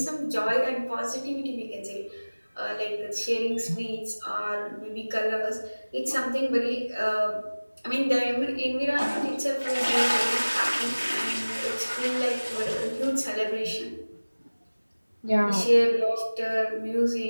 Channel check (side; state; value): both; inverted; correlation -1.00